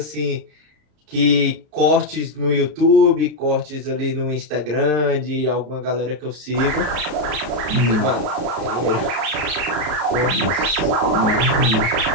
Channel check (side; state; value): left; late; 33 ms